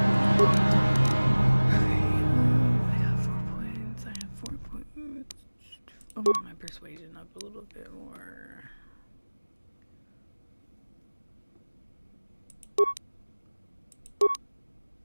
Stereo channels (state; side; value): inverted; both; correlation -1.00